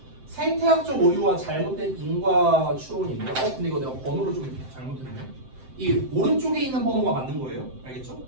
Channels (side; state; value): left; late; 7.7 ms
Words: 생태학적 오류와 잘못된 인과 추론인데, 근데 이거 내가 번호를 좀 잘못했네. 이 오른쪽에 있는 번호가 맞는 거예요. 알겠죠?